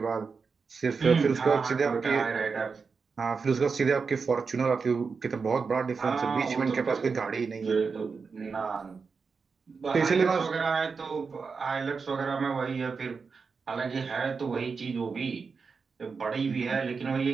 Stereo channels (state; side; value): quieter; left; 5.1 dB